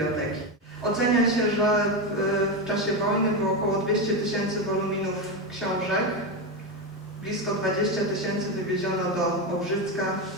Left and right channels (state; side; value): normal; both; correlation 0.13